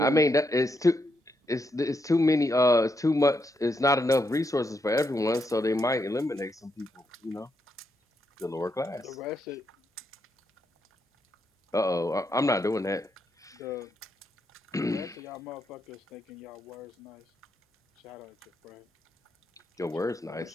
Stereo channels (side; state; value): both; normal; correlation 0.80